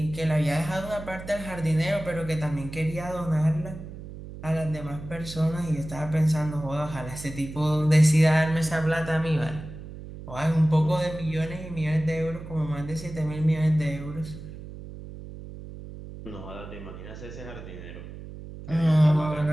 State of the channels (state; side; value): noise; right; hum, 13 dB below the sound